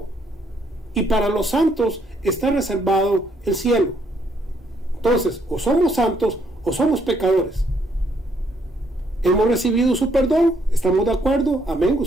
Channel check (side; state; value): both; normal; correlation 0.71